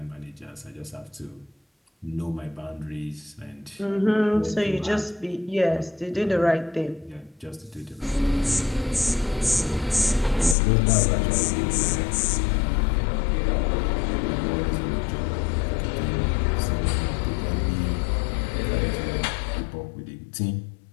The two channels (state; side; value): drops out; right; at 10.6 s